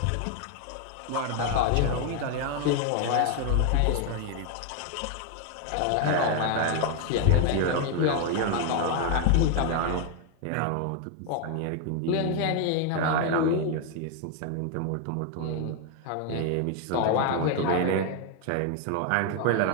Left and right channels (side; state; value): both; different; correlation 0.01